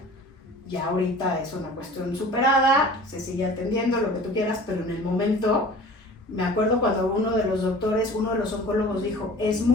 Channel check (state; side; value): normal; both; correlation 0.43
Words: Ya ahorita es una cuestión superada, se sigue atendiendo, lo que tú quieras, pero en el momento, me acuerdo cuando uno de los doctores, uno de los oncólogos dijo, es